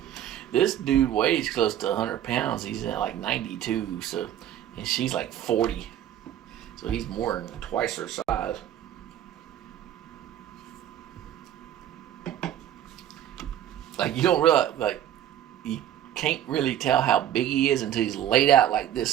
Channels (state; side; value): quieter; left; 11.1 dB